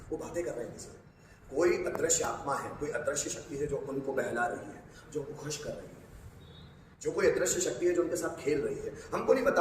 वो बातें कर रहे हैं किसी से। कोई अदृश्य आत्मा है, कोई अदृश्य शक्ति है जो उनको बहला रही है, जो उनको खुश कर रही है, जो कोई अदृश्य शक्ति है जो उनके साथ खेल रही है। हमको नहीं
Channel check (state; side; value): identical; both; correlation 1.00